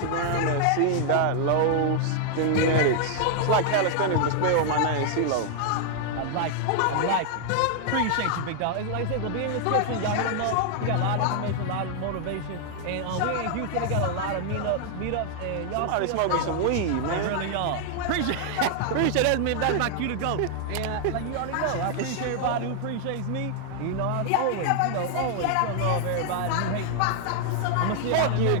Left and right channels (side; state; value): both; different; correlation 0.00